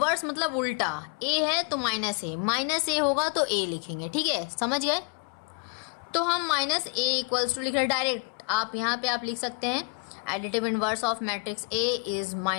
मतलब उल्टा, a है तो -a होगा तो a लिखेंगे, ठीक है, समझ गए। तो हम -a इक्वल्स टू लिख रहे डायरेक्ट, आप यहाँ पे आप लिख सकते हैं additive inverse of matrix a is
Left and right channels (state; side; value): quieter; right; 34.5 dB